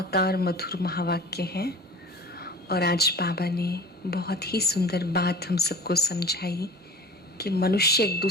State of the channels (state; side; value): normal; both; correlation 0.40